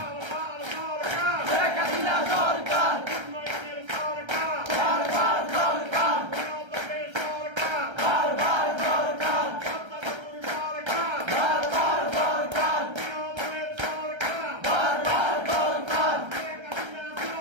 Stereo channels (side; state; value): left; late; 1.3 ms